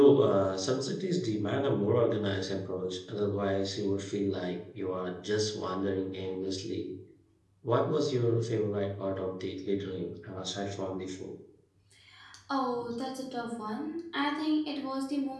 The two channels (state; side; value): identical; both; correlation 1.00